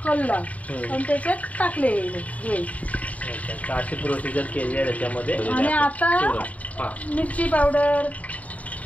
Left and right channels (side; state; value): right; late; 0.070 ms